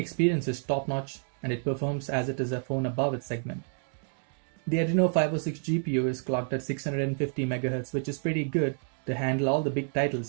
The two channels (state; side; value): silent; left; 58 dB below the other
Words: is top-notch and it performs as it is a phone above its segment. The ADRENO 506 GPU is clocked at 650 MHz, which is pretty good to handle all the big